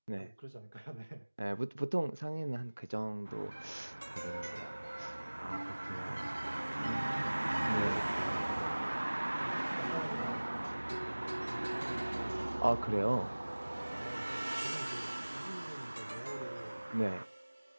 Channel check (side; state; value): both; inverted; correlation -1.00